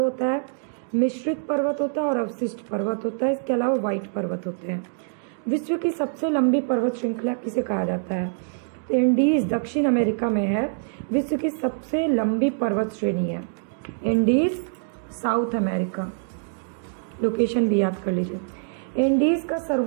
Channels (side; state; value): left; silent; digital silence